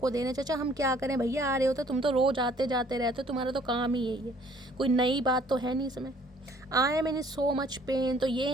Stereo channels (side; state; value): both; normal; correlation 0.58